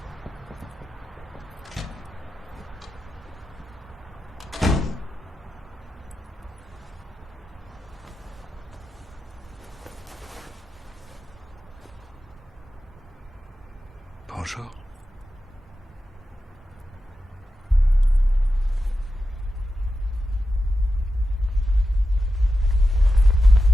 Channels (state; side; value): normal; both; correlation 0.91